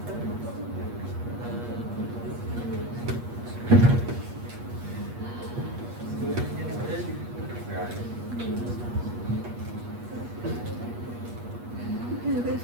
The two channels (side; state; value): left; late; 8.4 ms